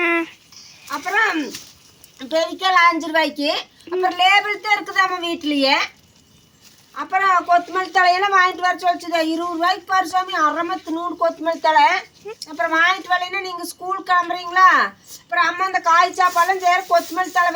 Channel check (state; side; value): identical; both; correlation 1.00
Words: அப்புறம் பெரிக்கல் 5 ரூபாய்க்கு. அப்புறம் லேபிள் தான் இருக்குது நம்ம வீட்லேயே. அப்புறம் கொத்தமல்லி தலையெல்லாம் வாங்கிட்டு வர சொல்லிச்சுது, 20 ரூபாய்க்கு பாரு சாமி. அரைமத்து 100 கொத்தமல்லி தலை. அப்புறம் வாங்கிட்டு வரலைன்னா நீங்கள் ஸ்கூல் கிளம்புறீங்களா? அப்புறம் அம்மா அந்த காய் சாப்பாடுலாம் சேர கொத்தமல்லி தலை